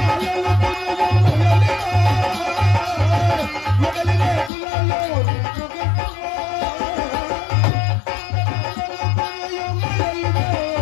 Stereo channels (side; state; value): right; drops out; at 4.5 s